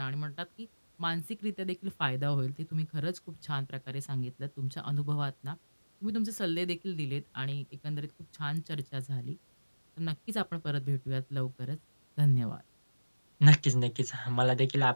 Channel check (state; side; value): inverted; both; correlation -1.00